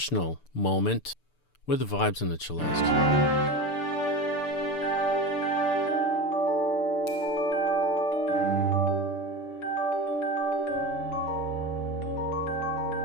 moment with the vibes and the cellist.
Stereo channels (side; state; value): right; late; 6.8 ms